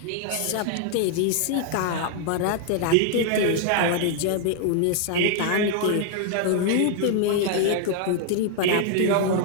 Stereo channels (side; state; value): both; different; correlation 0.00